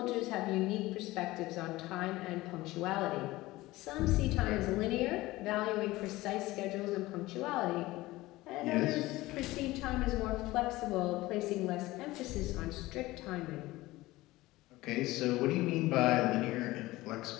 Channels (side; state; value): right; quieter; 18.7 dB